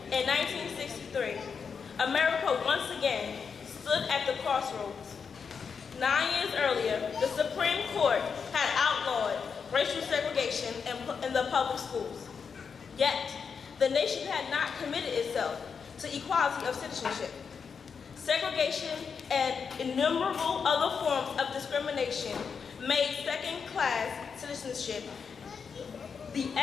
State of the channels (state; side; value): quieter; right; 6.0 dB